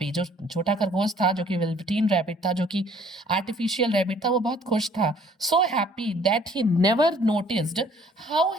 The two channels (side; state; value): both; normal; correlation 0.58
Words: जो छोटा खरगोश था जो कि वेलवेटीन रैबिट था, जो कि आर्टिफिशियल रैबिट था, वो बहुत खुश था। So happy that he never noticed how